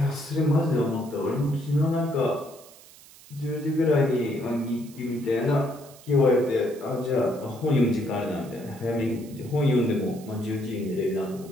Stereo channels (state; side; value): noise; right; hiss, 22 dB below the sound